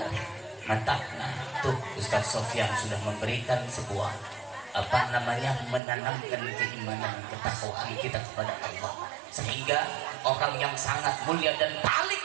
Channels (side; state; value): left; drops out; at 5.8 s